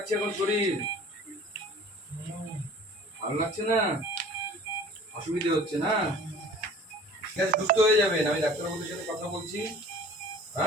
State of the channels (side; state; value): both; normal; correlation 0.46